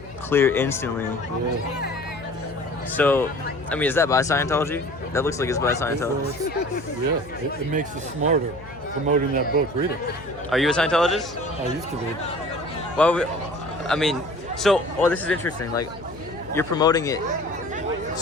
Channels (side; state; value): left; noise; hum, 18 dB below the sound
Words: Clear instantly. Yeah. So, I mean, is that by Scientology? That looks like it's by Scientology. Yeah, it makes you smarter promoting that book. Read it. Are you a Scientologist? I used to be. Well, I mean, so, this is interesting. Like, you're promoting it